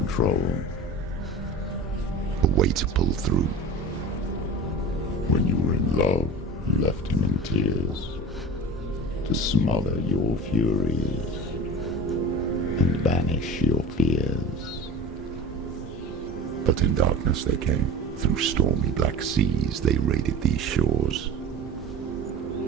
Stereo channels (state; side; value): normal; both; correlation 0.35